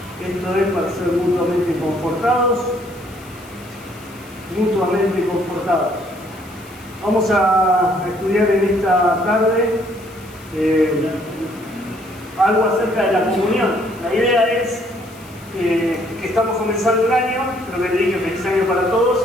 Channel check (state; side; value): noise; left; hiss, 23 dB below the sound